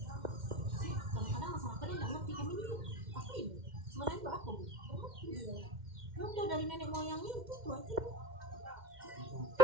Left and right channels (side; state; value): left; late; 2.1 ms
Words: kadang-kadang masalah kalian nggak ngerti kami ini apa ini sebenarnya itu apa bu? Ya udah dari nenek moyangnya itu aja.